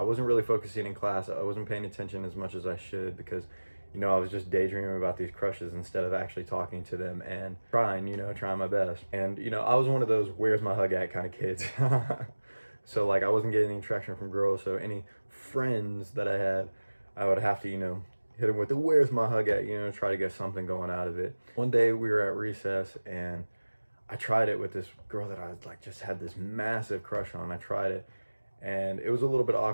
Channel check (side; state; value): both; inverted; correlation -1.00